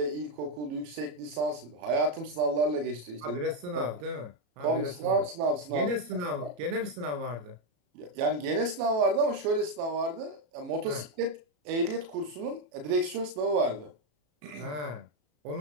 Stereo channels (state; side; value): late; left; 34 ms